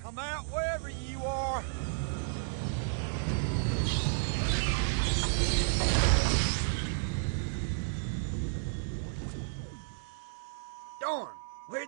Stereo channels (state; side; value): silent; left; digital silence